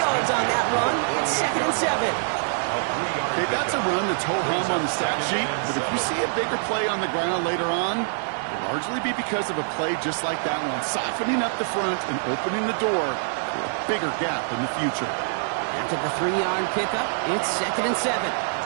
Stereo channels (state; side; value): silent; left; digital silence